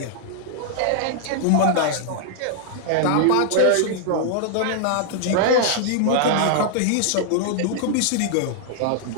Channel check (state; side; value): different; both; correlation -0.01